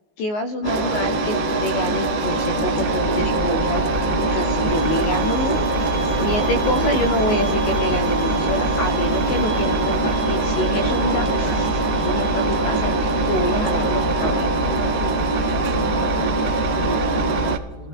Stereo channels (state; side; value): late; right; 18 ms